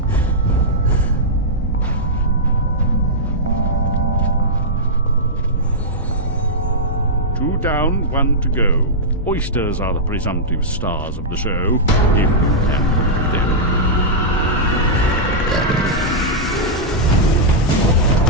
down, one to go. Oysters are the presumptive stars of the show, if you can them.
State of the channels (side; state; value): both; normal; correlation -0.09